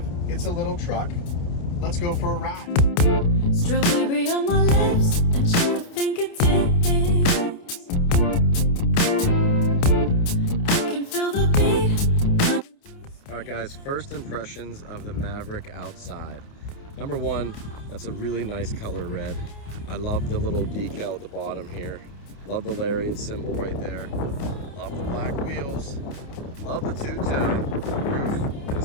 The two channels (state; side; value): late; right; 29 ms